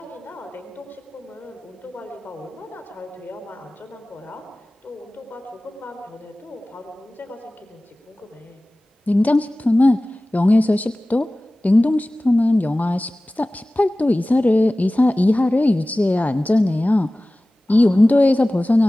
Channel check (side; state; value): both; normal; correlation 0.97